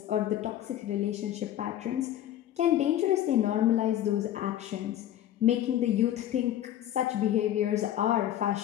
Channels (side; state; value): right; quieter; 12.0 dB